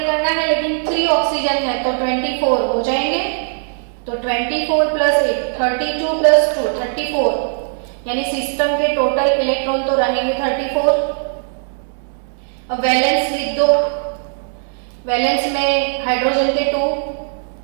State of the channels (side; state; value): left; silent; digital silence